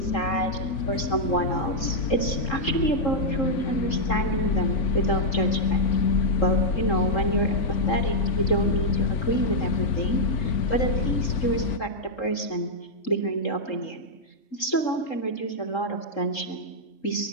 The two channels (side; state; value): right; late; 3.7 ms